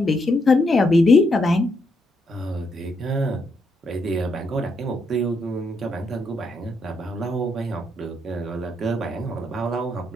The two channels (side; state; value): both; normal; correlation 0.77